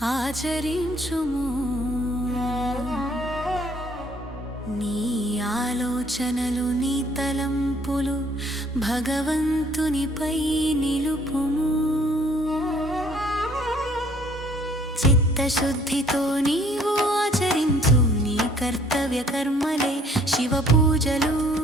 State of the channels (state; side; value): normal; both; correlation 0.60